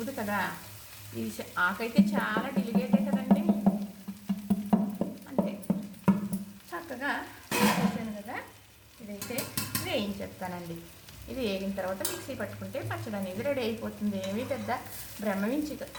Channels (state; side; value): identical; both; correlation 1.00